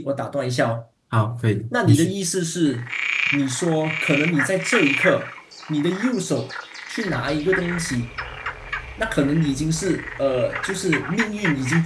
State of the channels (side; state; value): both; identical; correlation 1.00